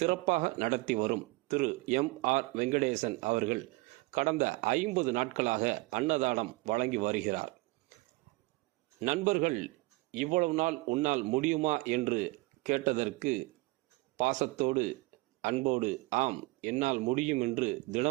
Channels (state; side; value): quieter; left; 23.5 dB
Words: நடத்தி வரும் திரு எம்.ஆர். வெங்கடேசன் அவர்கள் கடந்த 50 நாட்களாக அன்னதானம் வழங்கி வருகிறார். நண்பர்கள் இவ்வளவு நாள் உன்னால் முடியுமா என்று கேட்டதற்கு பாசத்தோடு அன்போடு ஆம் என்னால் முடியும் என்று